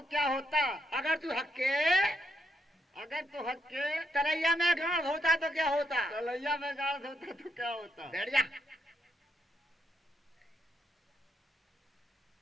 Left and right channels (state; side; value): normal; both; correlation 0.79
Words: क्या होता? अगर तू हक्के अगर तो हक के तरैया में गांव होता तो क्या होता। तलैया में गाड़ होता तो क्या होता? बैठ जा।